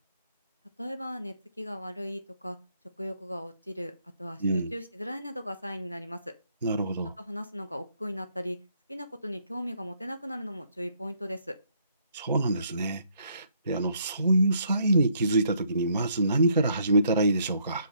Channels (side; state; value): both; inverted; correlation -0.68